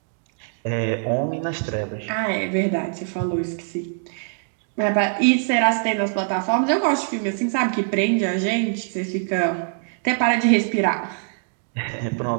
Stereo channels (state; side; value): silent; left; 63 dB below the other